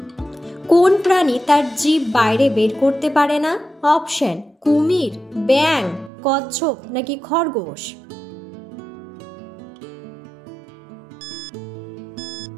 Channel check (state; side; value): drops out; left; at 6.1 s